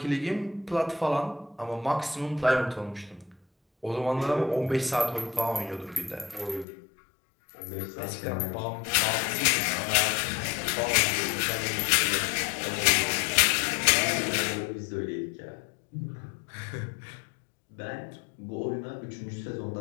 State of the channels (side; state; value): right; drops out; at 6.7 s